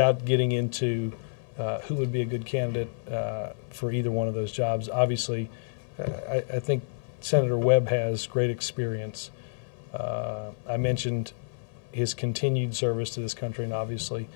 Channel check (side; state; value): right; silent; 59 dB below the other